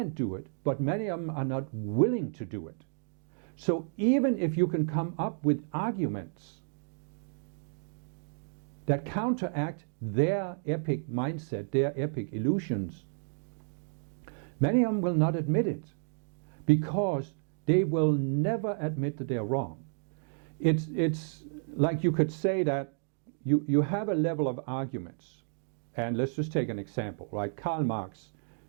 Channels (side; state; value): left; silent; digital silence